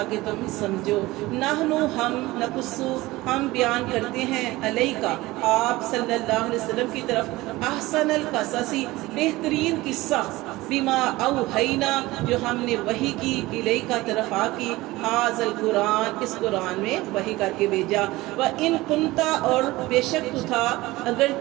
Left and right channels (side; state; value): left; quieter; 19.3 dB